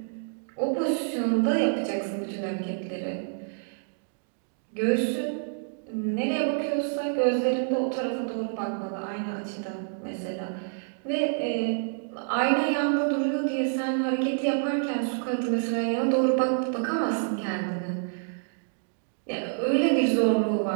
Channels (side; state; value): left; silent; digital silence